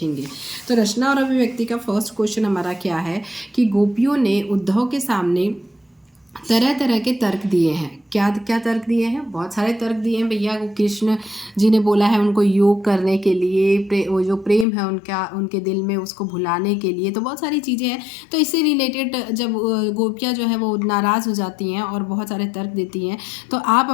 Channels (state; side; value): drops out; right; at 14.7 s